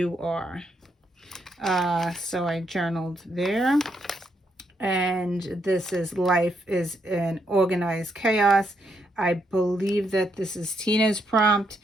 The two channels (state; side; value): normal; both; correlation 0.77